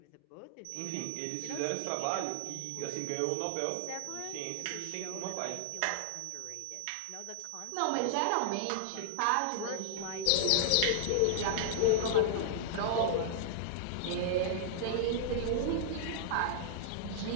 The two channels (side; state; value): both; different; correlation -0.01